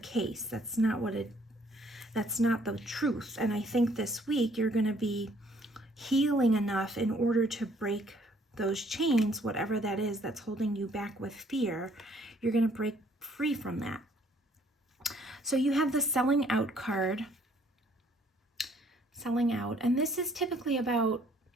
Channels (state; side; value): normal; both; correlation 0.62